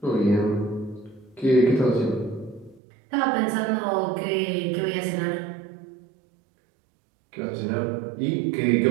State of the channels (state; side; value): drops out; left; at 2.8 s